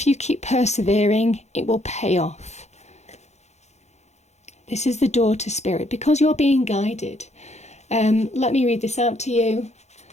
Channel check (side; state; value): right; late; 0.32 ms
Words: you keep persevering, it will pay off. This is the door to spirit, because you're being guided. Let me read this out to you.